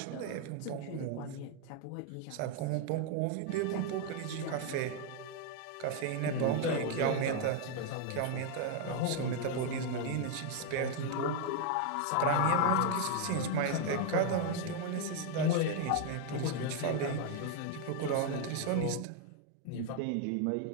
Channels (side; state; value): both; different; correlation 0.00